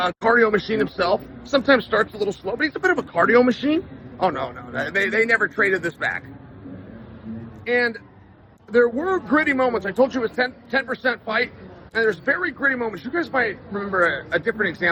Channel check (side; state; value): both; identical; correlation 1.00